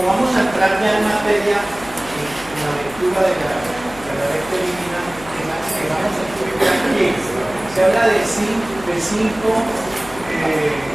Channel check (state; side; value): noise; left; hum, 17 dB below the sound